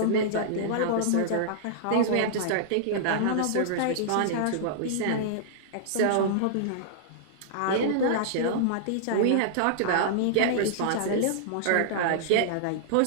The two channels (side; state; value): both; different; correlation -0.01